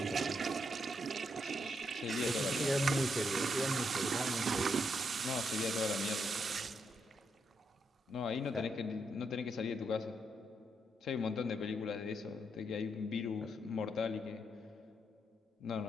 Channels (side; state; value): both; normal; correlation 0.79